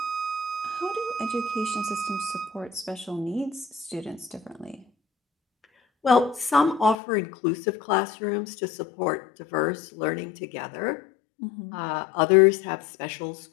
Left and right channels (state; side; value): drops out; right; at 7.0 s